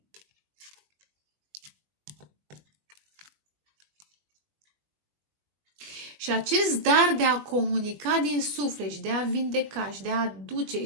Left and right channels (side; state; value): left; late; 20 ms